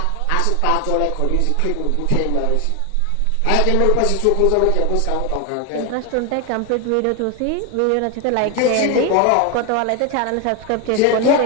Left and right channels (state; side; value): different; both; correlation 0.01